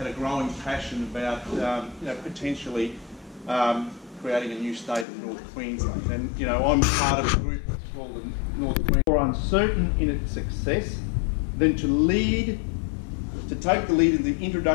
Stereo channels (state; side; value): drops out; right; at 5.1 s